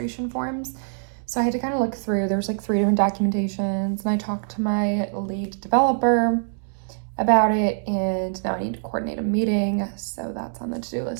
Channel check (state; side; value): silent; left; digital silence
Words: forms. So I had to kind of look through, there's 3 different documentations, and I talked to my lead developer about it, and now I need to coordinate a meeting. So that's on the to-do